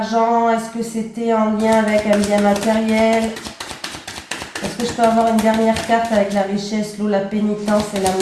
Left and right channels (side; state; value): both; identical; correlation 1.00